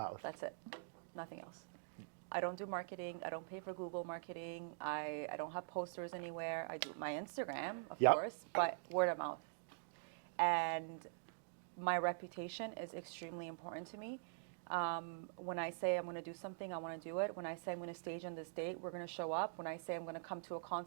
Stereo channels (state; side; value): silent; left; digital silence